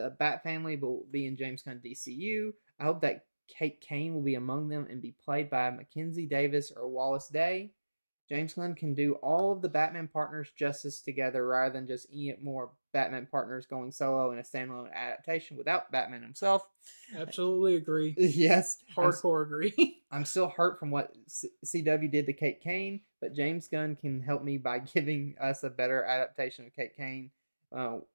Bat family will be in James Gunn DCU, I hope that Kate Kane will be among them and be played by Mackenzie Davis or Wallace Day. James Gunn can do all of the Batman partners justice together rather than just any more Batman partners going solo in a standalone adaptation without Batman himself. Absolutely agree. Yes. Hardcore agree. I'm still hurt from what CW did to Kate Kane, but James Gunn can help me by giving us a better adaptation of Kate Kane,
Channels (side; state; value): both; inverted; correlation -1.00